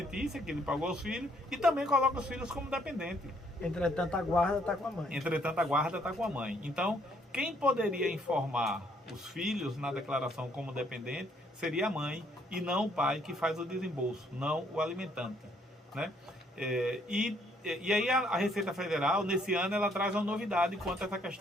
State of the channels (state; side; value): normal; both; correlation 0.67